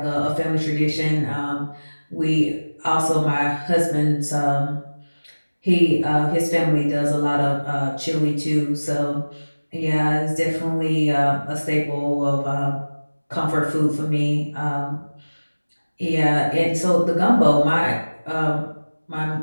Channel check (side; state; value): both; inverted; correlation -1.00